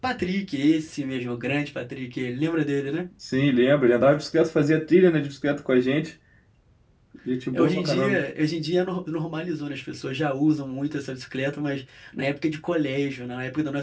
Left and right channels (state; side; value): identical; both; correlation 1.00